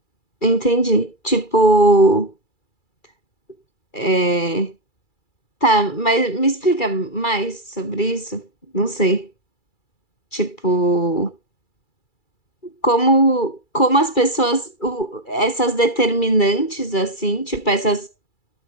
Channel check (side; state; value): right; late; 2.3 ms